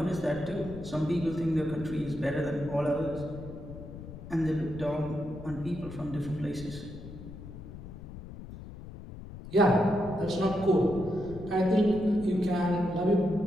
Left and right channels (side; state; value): left; noise; rumble, 13 dB below the sound